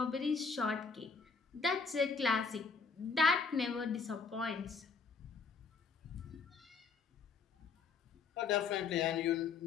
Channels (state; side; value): quieter; right; 5.1 dB